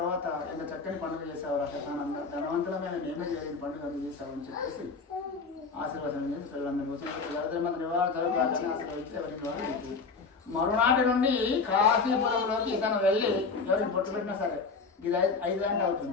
ఎంత చక్కని పండుగ చేసావు రాక్షసానంద, ధనవంతులమైన నేమే చేయని పండుగ చేసావు అని చెప్పేసి ఆశీర్వాదం చేసి పిల్లలందరూ వచ్చిన నివారణ జరుగుతారని ఆశీర్వదించి ఎవరికి వాళ్ళు. మరునాటి నుండి కాశీపురంలోకి ఇతను వెళ్ళి ఎవరికి బొట్టు పెట్టినా సరే ఇది 5 గంటలు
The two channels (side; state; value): right; quieter; 4.6 dB